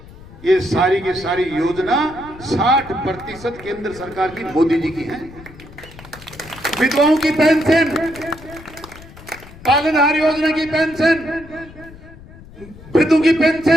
ये सारी की सारी योजना 60% केंद्र सरकार की मोदी जी की है। विधवाओं की पेंशन, पालनहार योजना की पेंशन, वृद्धों की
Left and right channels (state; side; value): noise; left; rumble, 19 dB below the sound